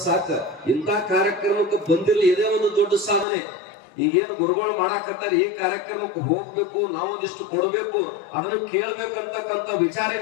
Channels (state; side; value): drops out; right; at 3.2 s